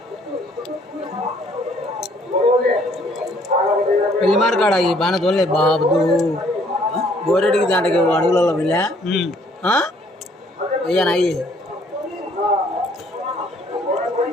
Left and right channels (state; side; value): normal; both; correlation 0.63